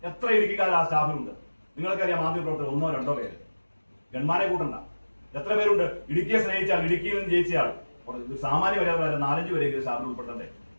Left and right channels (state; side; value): inverted; both; correlation -1.00